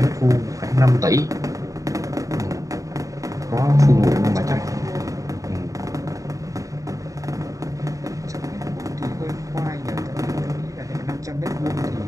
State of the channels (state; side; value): late; left; 0.16 ms